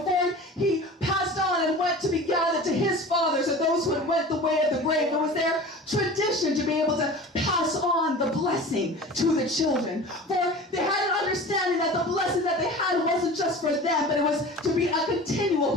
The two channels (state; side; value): normal; both; correlation 0.37